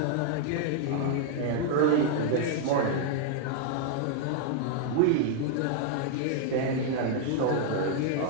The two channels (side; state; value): both; different; correlation 0.00